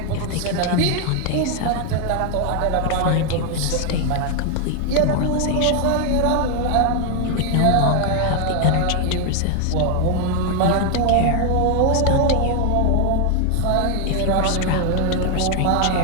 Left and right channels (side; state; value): both; different; correlation 0.00